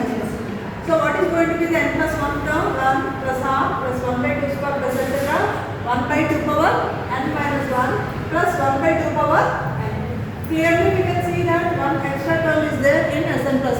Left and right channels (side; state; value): both; identical; correlation 1.00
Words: 1. So what is going to be the n plus 1 term? 1 plus half plus 1 by 2 square plus etc. 1 by 2 power n minus 1 plus 1 by 2 power n. Clearly we can see that one extra term is there in Sn plus